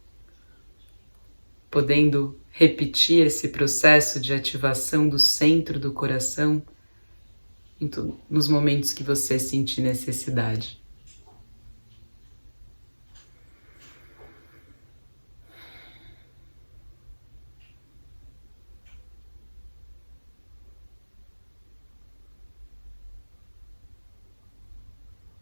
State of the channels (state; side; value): inverted; both; correlation -1.00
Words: Podendo repetir esse processo de ativação do centro do coração nos momentos que você sentir necessidade.